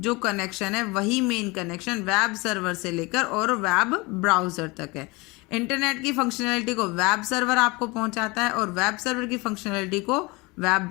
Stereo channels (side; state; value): right; quieter; 25.1 dB